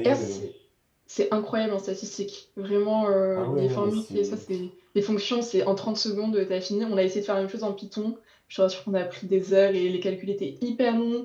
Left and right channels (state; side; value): identical; both; correlation 1.00